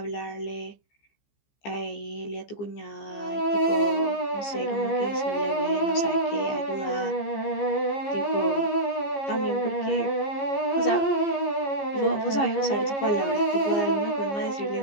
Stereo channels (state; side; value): late; right; 15 ms